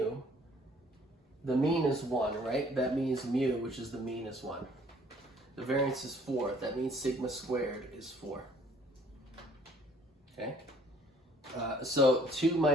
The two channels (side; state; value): both; normal; correlation 0.59